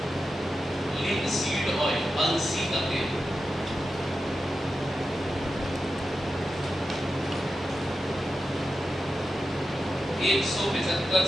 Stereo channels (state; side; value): normal; both; correlation 0.91